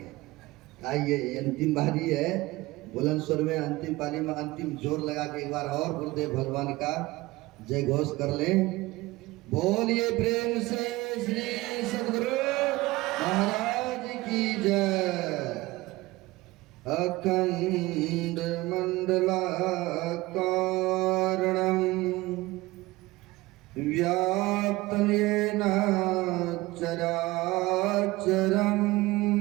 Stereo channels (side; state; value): left; quieter; 20.0 dB